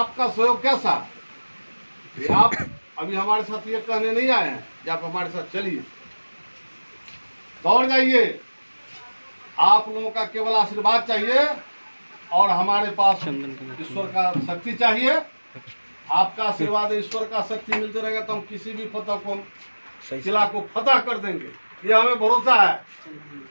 सहयोग कैसा? ये आप अभी हमारे साथ ये कहने नहीं आए हैं कि आप हमारे साथ चलिए, दौड़ जाइए। आप लोगों का केवल आशीर्वाद चाहिए और हमारे पास ईश्वर का शक्ति चाहिए। आपका आशीर्वाद, ईश्वर का शक्ति मिलते रहेगा तो हम किसी भी फतह को, किला को फतह कर देंगे, ये हमें भरोसा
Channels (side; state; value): both; inverted; correlation -1.00